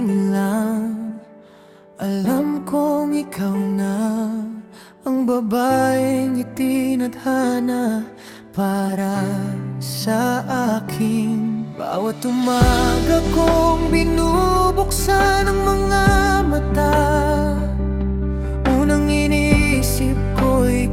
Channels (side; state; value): both; identical; correlation 1.00